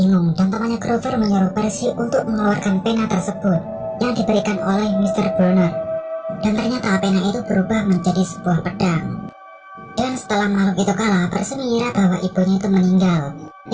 dan temannya Grover menyuruh Percy untuk mengeluarkan pena tersebut yang diberikan oleh Mr. Bonner. Dan ternyata pena itu berubah menjadi sebuah pedang. Dan setelah makhluk itu kalah, Percy mengira bahwa ibunya itu meninggal,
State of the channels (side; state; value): both; identical; correlation 1.00